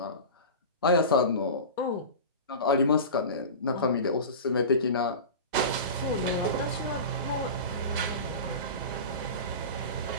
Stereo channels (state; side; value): inverted; both; correlation -0.30